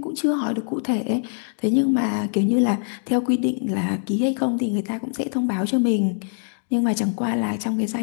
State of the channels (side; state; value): right; silent; digital silence